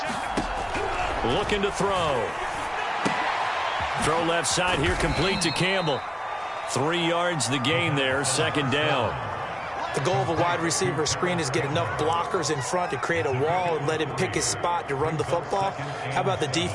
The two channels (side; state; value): both; identical; correlation 1.00